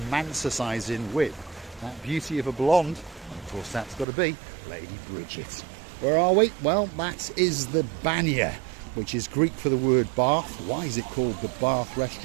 with that beauty of a blonde. And of course that's got to be Lady Bridget. Where are we? Well, that is the Banya, which is Greek for the word bath. Why is it called the Bath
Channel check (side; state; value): left; drops out; at 4.0 s